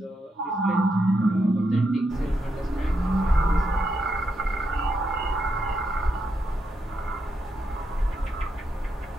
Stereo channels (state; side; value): normal; both; correlation 0.82